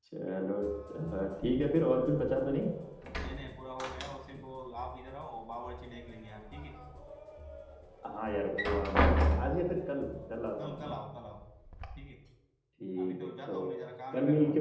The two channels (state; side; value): identical; both; correlation 1.00